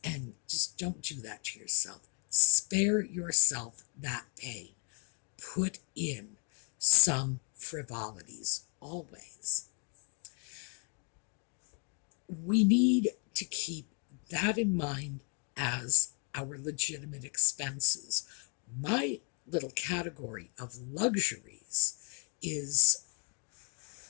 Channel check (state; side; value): quieter; right; 38.8 dB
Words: And just don't do that to yourself. Spare yourself that pain. Put in some frivolities always. We need to keep that in mind as our legitimate expenses. My little category of luxuries is,